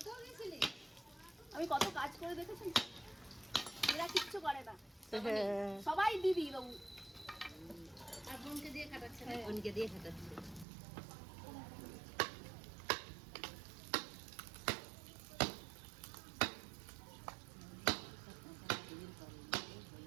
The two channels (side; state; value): left; drops out; at 10.7 s